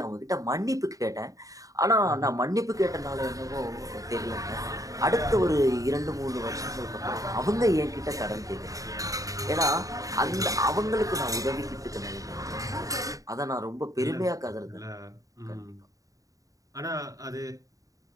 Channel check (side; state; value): left; late; 0.16 ms